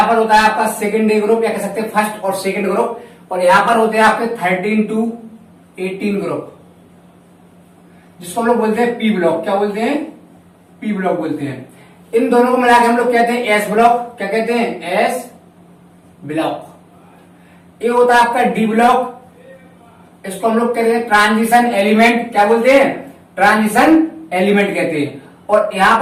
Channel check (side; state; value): both; identical; correlation 1.00